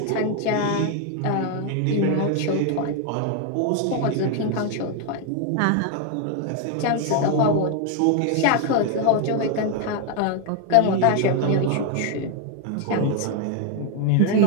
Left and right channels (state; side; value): different; both; correlation 0.01